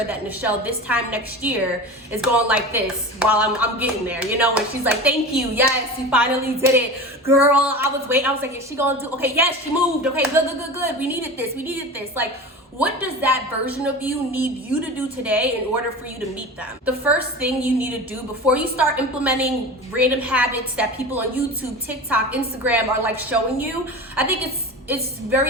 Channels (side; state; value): both; normal; correlation 0.31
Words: that Nichelle this time next year is going like this while I'm getting there, you know? And she's like, thank you, yes, you finally did it. Girl, I was waiting, I was like, is she gonna do, okay, yes, she moved, okay, good, we needed this. Like, what does that version of you need you to do today in order for you to meet them? The first thing you need to do before you start implementing random habits that people on YouTube, TikTok, Instagram are like showing you, I think it's